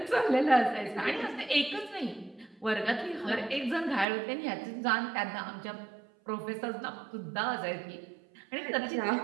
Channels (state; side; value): drops out; left; at 4.0 s